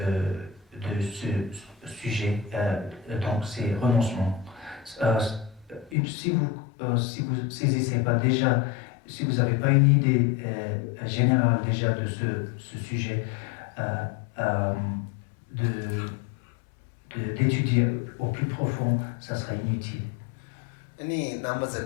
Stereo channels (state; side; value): drops out; right; at 6.0 s